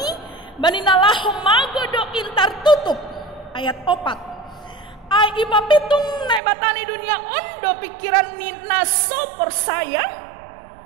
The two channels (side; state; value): left; drops out; at 6.4 s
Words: Bani nalahum magodo intar tutup. Ayat opat. Ai ipa pitung naibatani dunia ondo pikiran ni naso persaya.